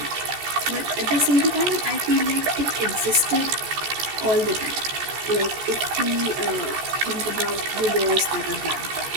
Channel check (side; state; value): left; late; 14 ms